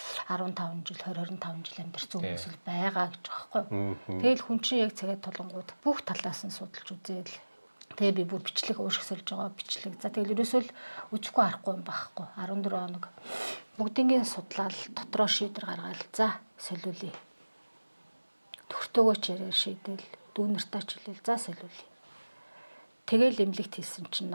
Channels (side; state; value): both; inverted; correlation -1.00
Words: 15 жил 20-25 жил амьдарч хүмүүс л байгаа гэж байгаа байхгүй. Тэгэл хүн чинь яг цагаад толонгууд бүх талаас нь судалж үзээл. Тэгээ би бүр бичлэг уушиг сольж байгаа бичлэг. За тэгэл ерөөсөө л үзэхгүй арахгүй юм байхгүй. 14 хоног бүгднийг судлаад дотроо шийдвэр гаргаад за солиулъя. Төгтөөгөө ч яриа шийдэл дүүнэртээ ч хэлээл за солиулъя. Тэгэл эмнэлэгт хийсэн чинь